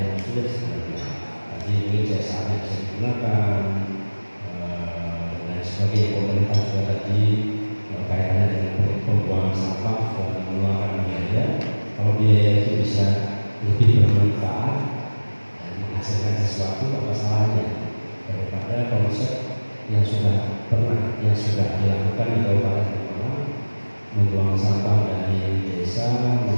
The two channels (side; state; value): both; inverted; correlation -1.00